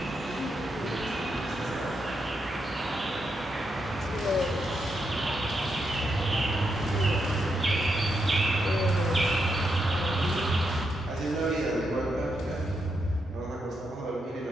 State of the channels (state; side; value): normal; both; correlation 0.82